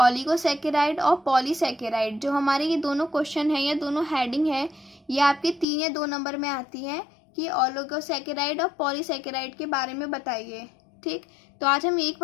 और पॉलीसैकेराइड। जो हमारे ये दोनों क्वेश्चन है या दोनों हेडिंग है, ये आपके 3 या 2 नंबर में आती है कि ऑलिगोसैकेराइड और पॉलीसैकेराइड के बारे में बताइए। ठीक, तो आज हम एक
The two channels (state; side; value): drops out; right; at 5.7 s